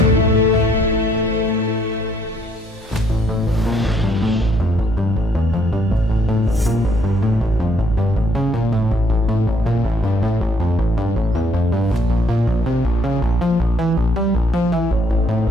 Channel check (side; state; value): both; normal; correlation 0.67